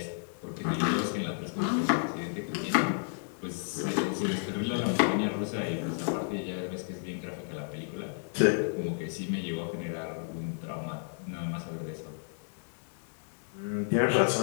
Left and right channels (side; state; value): right; silent; digital silence